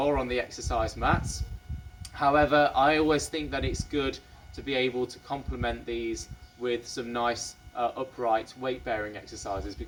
on the exercise mats. However, I always think that it's good to be able to complement these with some nice upright weight bearing exercises,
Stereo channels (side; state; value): both; identical; correlation 1.00